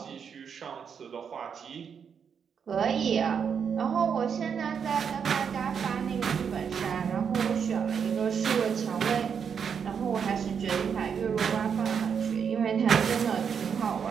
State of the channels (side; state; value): left; quieter; 7.0 dB